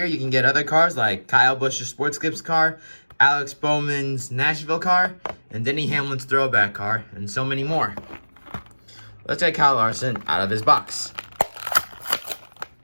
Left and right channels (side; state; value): both; inverted; correlation -1.00